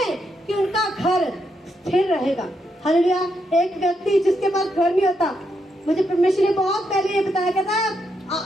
कि उनका घर स्थिर रहेगा। हालेलुया। एक व्यक्ति जिसके पास घर नहीं होता, मुझे परमेश्वर ने बहुत पहले ये बताया, कहता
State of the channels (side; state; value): both; normal; correlation 0.80